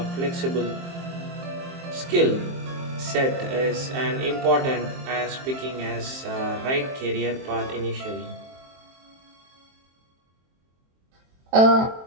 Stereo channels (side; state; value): left; late; 23 ms